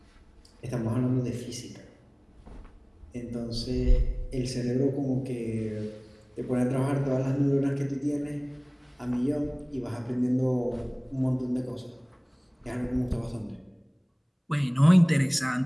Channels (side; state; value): both; identical; correlation 1.00